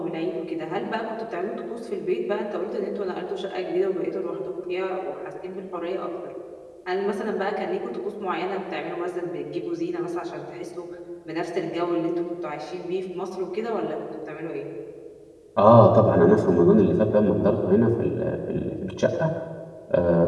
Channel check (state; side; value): identical; both; correlation 1.00